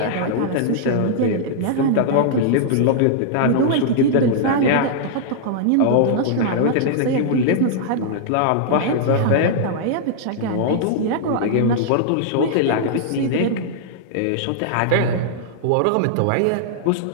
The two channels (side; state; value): both; different; correlation -0.01